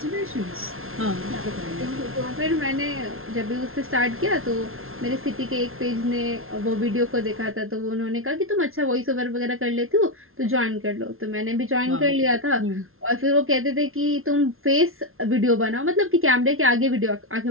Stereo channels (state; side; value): late; left; 0.61 ms